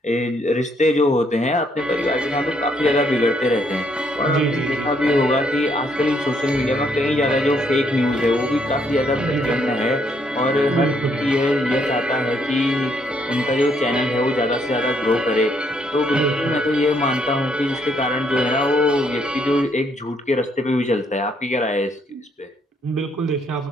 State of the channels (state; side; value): normal; both; correlation 0.71